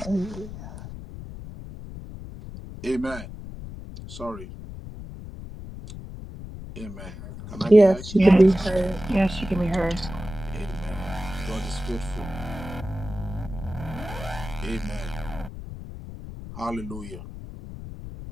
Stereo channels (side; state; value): left; noise; rumble, 11 dB below the sound